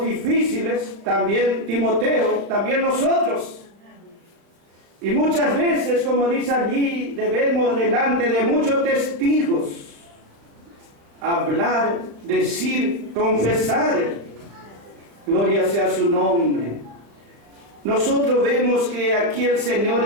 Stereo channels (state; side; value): late; left; 35 ms